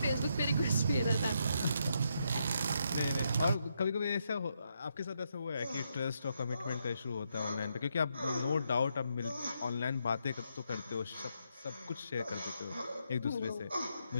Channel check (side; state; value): both; inverted; correlation -0.79